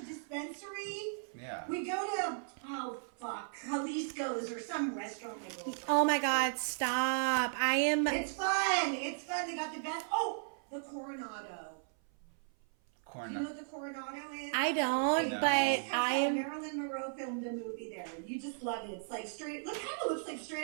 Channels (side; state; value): left; silent; 54 dB below the other